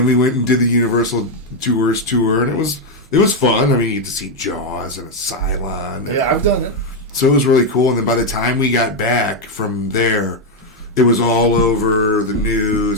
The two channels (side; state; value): both; normal; correlation 0.03